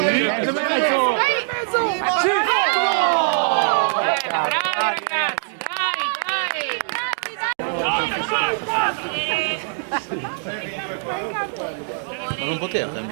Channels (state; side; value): silent; left; 64 dB below the other